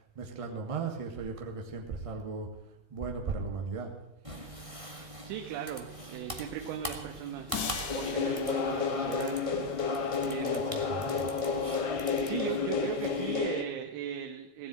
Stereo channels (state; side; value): late; left; 1.6 ms